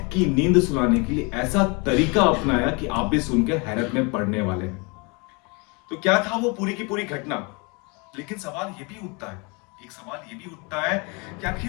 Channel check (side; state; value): right; quieter; 30.4 dB